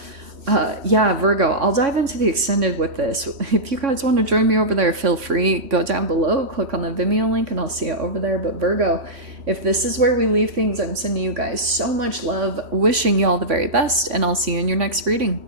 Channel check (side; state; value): left; late; 3.1 ms